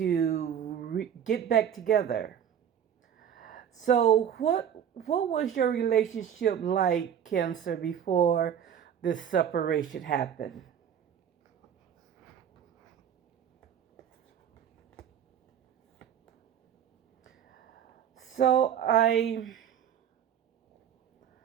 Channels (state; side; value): quieter; left; 9.0 dB